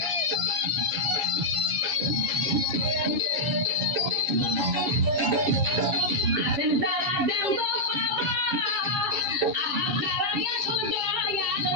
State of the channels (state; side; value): late; left; 7.1 ms